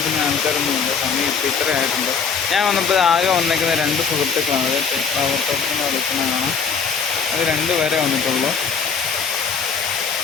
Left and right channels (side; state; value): right; quieter; 6.0 dB